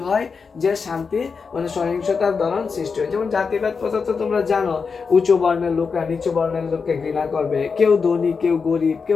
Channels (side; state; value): right; quieter; 5.3 dB